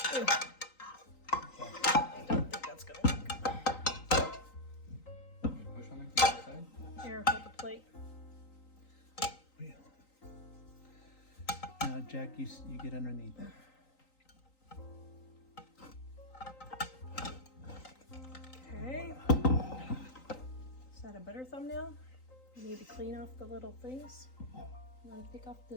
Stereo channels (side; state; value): right; late; 3.9 ms